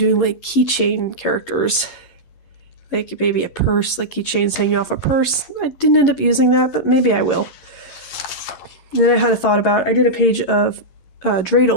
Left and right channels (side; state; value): right; late; 11 ms